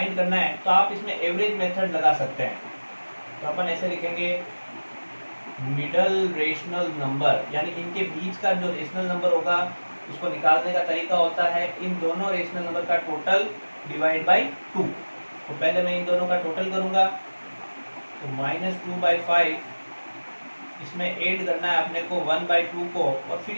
करना है तो आप इसमें एवरेज मेथड लगा सकते हैं। तो अपन ऐसे लिखेंगे, मिडल रेशनल नंबर, यानी इनके बीच का जो रेशनल नंबर होगा उसको निकालने का तरीका होता है इन दोनों रेशनल नंबर का टोटल डिवाइड बाई 2। तो पहले मैं इन दोनों का टोटल करूंगा, तो -2/5 इसमें ऐड करना है अपने को 1/2 को, और फिर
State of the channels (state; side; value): inverted; both; correlation -1.00